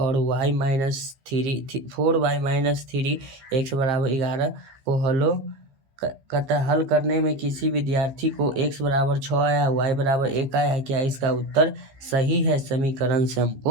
y - 4y - 3 x बराबर 11 को कहता है हल करने में किसी विद्यार्थी को x बराबर 6 आया, y बराबर 1 आया है, क्या इसका उत्तर सही है? समीकरण से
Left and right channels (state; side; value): late; left; 15 ms